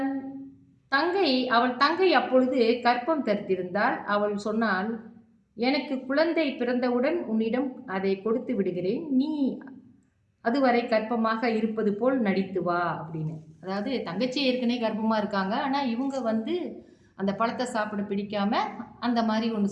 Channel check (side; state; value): both; identical; correlation 1.00